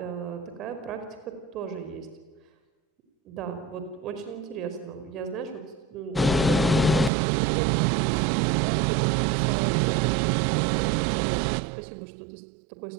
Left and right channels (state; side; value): drops out; left; at 7.1 s